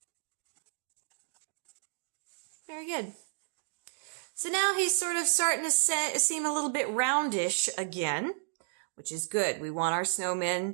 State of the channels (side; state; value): left; silent; digital silence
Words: Very good. So now he's sort of starting to seem a little bit roundish again, which is good. We want our